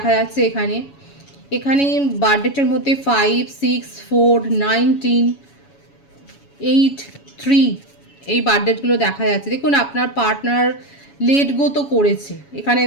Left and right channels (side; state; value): right; late; 7.1 ms